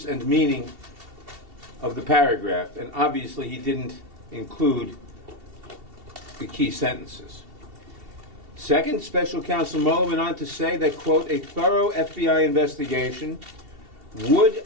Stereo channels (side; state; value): left; late; 2.7 ms